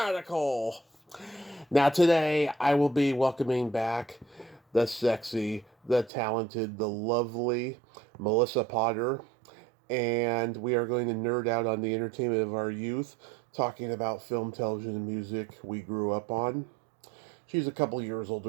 Now today I will be welcoming back the sexy, the talented, the lovely Melissa Potter, and we are going to nerd out on the entertainment of our youth, talking about film, television, and music we grew up on. She's a couple years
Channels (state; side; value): drops out; left; at 6.1 s